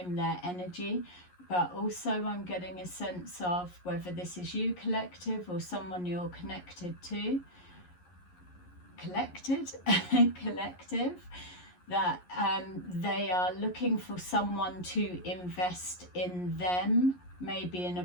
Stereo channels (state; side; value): late; right; 11 ms